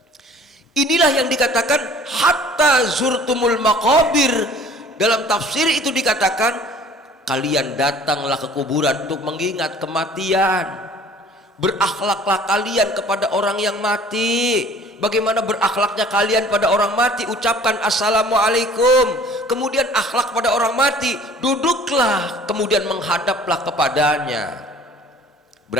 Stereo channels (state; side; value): normal; both; correlation 0.50